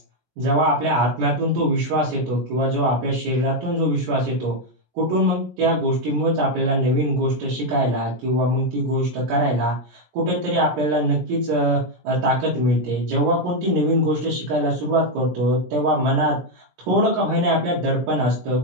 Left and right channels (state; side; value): late; left; 17 ms